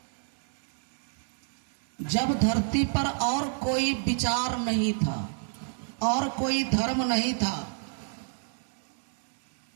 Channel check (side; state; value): left; silent; 59 dB below the other